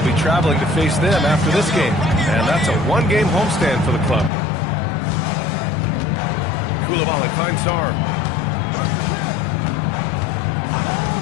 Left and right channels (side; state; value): right; drops out; at 4.3 s